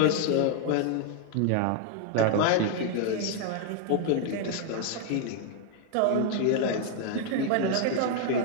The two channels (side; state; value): both; different; correlation 0.00